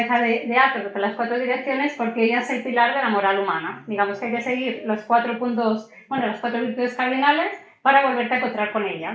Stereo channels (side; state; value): both; identical; correlation 1.00